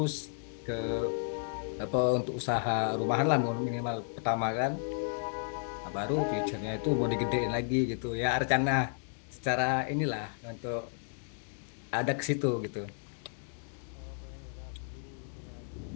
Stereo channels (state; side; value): silent; right; digital silence